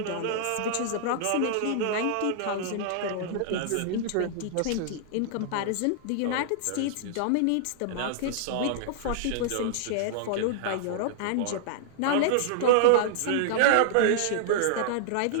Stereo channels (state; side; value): different; both; correlation -0.01